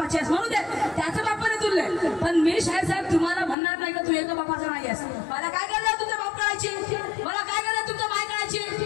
आहेस, म्हणू दे, त्याचं बापाने तुलले. पण मी शाहीर साहेब तुम्हाला म्हणणार नाही का तू एका बापाचा नाही आहेस. मला काय करायला तुमच्या बाप कळायची, मला काय करायला तुमच्या माय कळायची.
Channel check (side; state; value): right; drops out; at 3.6 s